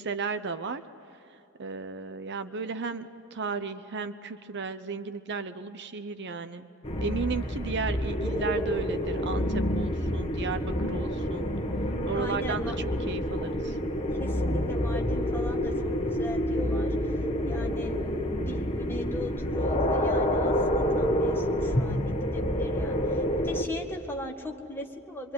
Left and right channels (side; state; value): both; normal; correlation 0.50